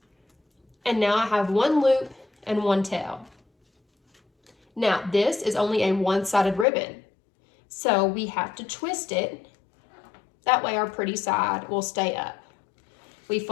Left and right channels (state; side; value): drops out; right; at 6.7 s